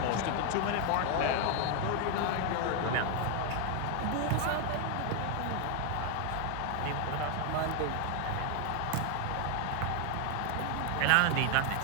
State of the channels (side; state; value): both; different; correlation 0.01